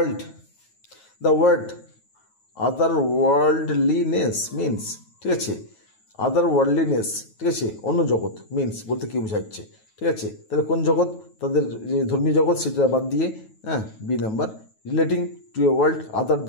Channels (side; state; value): right; late; 9.3 ms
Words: word other worldliness means, ঠিক আছে, আদার ওয়ার্ল্ডলিনেস, ঠিক আছে, অন্য জগৎ, মিনস বলতে কী বোঝাচ্ছে, ঠিক আছে, তাহলে কোন জগৎ, তাদের যে ধর্মীয় জগৎ সেটা বাদ দিয়ে, B number relating to a world other